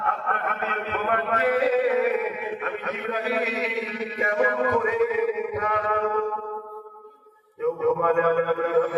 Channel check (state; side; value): identical; both; correlation 1.00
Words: জিবরাইল কেমন করে উঠানো কেউ ঘুমালে